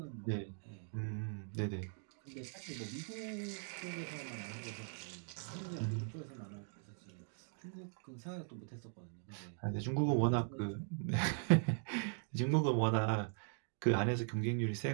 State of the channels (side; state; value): left; silent; 51 dB below the other